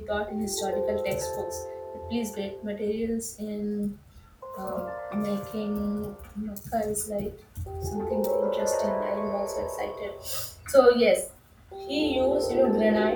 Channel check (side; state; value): both; identical; correlation 1.00